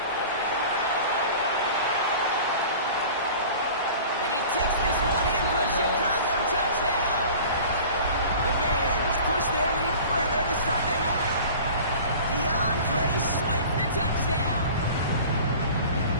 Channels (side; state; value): both; inverted; correlation -0.41